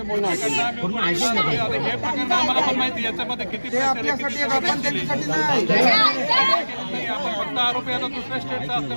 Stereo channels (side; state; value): both; inverted; correlation -1.00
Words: प्रकरण आम्हाला पण माहिती याच्यामध्ये किती आपण फक्त आरोपी आता दुसऱ्या स्टेटचा